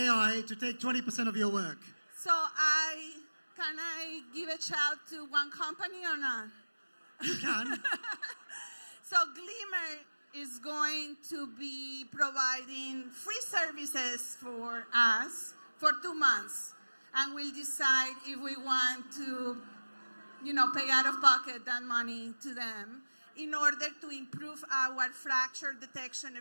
to take 20% of your work? So can I give a shout to one company or not? You can. So Glimmer is going to be providing free services for us for 2 months. And we'll decide if we want to, pay out of pocket that money to them in order to improve our fracture detection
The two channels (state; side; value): inverted; both; correlation -1.00